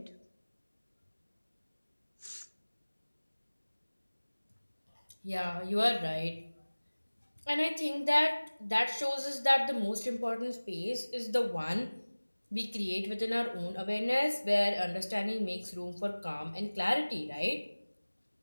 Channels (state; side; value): inverted; both; correlation -1.00